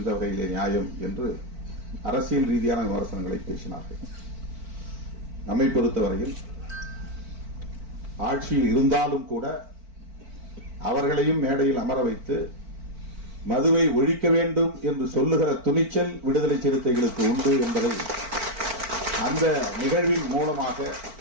வகையிலே நியாயம் என்று அரசியல் ரீதியான விமர்சனங்களை பேசினார்கள். நம்மை பொறுத்தவரையில் ஆட்சியில் இருந்தாலும் கூட அவர்களையும் மேடையில் அமர வைத்து மதுவை ஒழிக்க வேண்டும் என்று சொல்லுகிற துணிச்சல் விடுதலை சிறுத்தைகளுக்கு உண்டு என்பதை அந்த நிகழ்வின் மூலமாக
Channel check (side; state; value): left; late; 4.4 ms